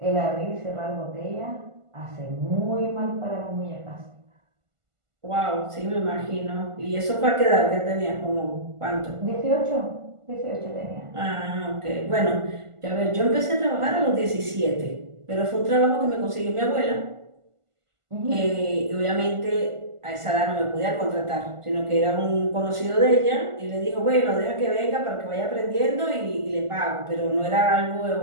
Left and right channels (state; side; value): late; left; 1.5 ms